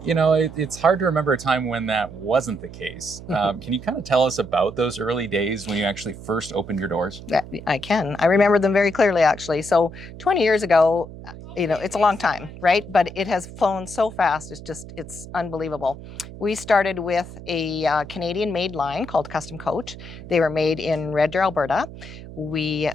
it's hard to remember a time when that wasn't the case. Can you kind of tell us about those early days when you actually first opened your doors? Yeah, I can. I remember them very clearly, actually. So 20 years ago, it's a long time, right? But it has flown so fast. It's unbelievable. We started with a Canadian-made line called Custom Coach. They were made in Red Deer, Alberta. We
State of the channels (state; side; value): noise; right; hum, 14 dB below the sound